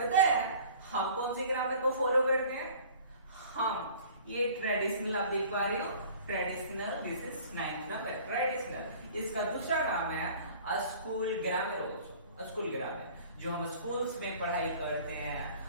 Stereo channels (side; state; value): both; inverted; correlation -0.47